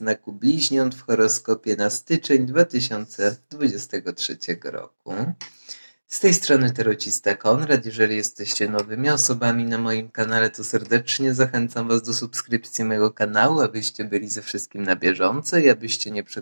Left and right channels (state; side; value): inverted; both; correlation -1.00